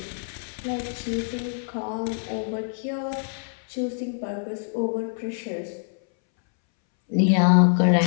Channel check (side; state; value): right; silent; 62 dB below the other